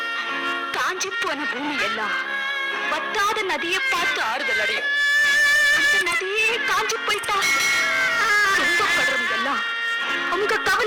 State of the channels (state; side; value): identical; both; correlation 1.00